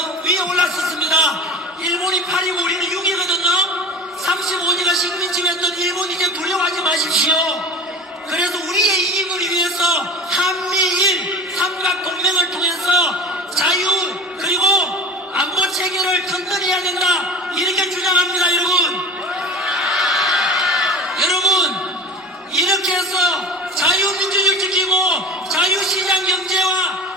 위에 올랐었습니다. 일본이 8이고 우리는 6이거든요. 35년간 식민지했던 일본 이제 두려워하지 마십시오. 그래서 우리의 이익을 위해서 한미일 삼각동맹을 통해서 자유 그리고 안보 체계를 튼튼히 해야 된다 이렇게 주장합니다. 여러분 이렇게 해서 자유민주주의를 지키고 자유시장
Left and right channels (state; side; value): normal; both; correlation 0.34